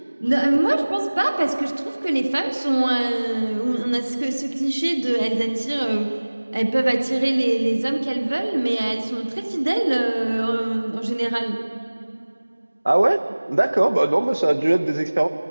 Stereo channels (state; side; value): inverted; both; correlation -1.00